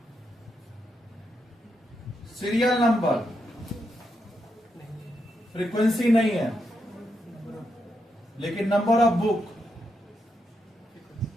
सीरियल नंबर फ्रीक्वेंसी नहीं है, लेकिन नंबर ऑफ बुक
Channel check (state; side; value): normal; both; correlation 0.82